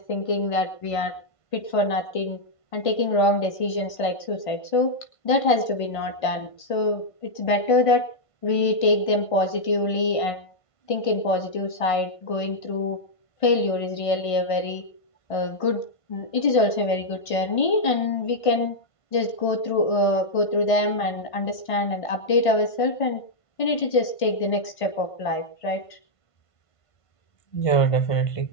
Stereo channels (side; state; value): right; late; 1.5 ms